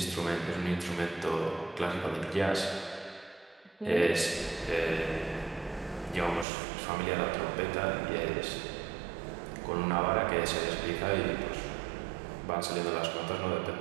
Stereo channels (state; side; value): drops out; left; at 6.5 s